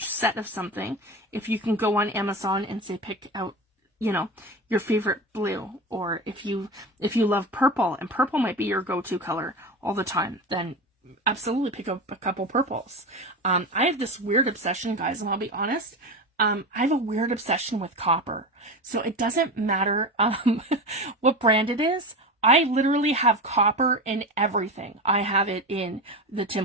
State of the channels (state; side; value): normal; both; correlation 0.24